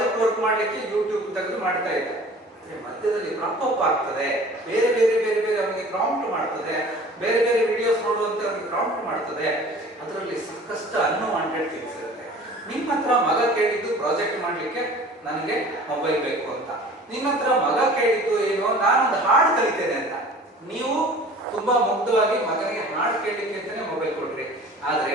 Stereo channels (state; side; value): normal; both; correlation 0.45